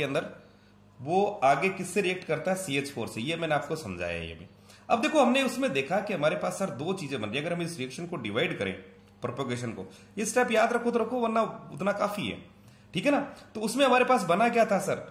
अंदर वो आगे किससे रिएक्ट करता है CH4 से, ये मैंने आपको समझाया है ये भी। अब देखो हमने उसमें देखा कि हमारे पास सर दो चीजें बन रही है। अगर हम इस रिएक्शन को डिवाइड करें प्रोपोगेशन को, ये स्टेप याद रखो तो रखो वरना उतना काफी है, ठीक है ना। तो उसमें हमारे पास बना क्या था सर,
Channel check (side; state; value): both; identical; correlation 1.00